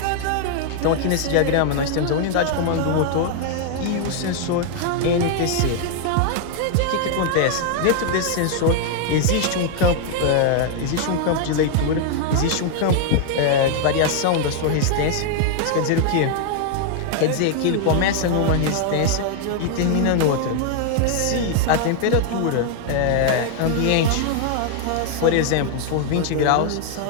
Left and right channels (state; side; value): different; both; correlation 0.00